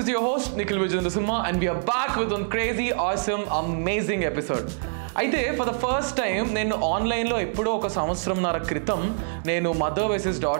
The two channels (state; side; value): silent; left; digital silence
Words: your host Nikhil Vijayandasumma and we are back with one crazy, awesome, amazing episode. అయితే for the first time నేను ఆన్లైన్లో ఎప్పుడో ఒక సంవత్సరంన్నర క్రితం నేను మదర్ వర్సెస్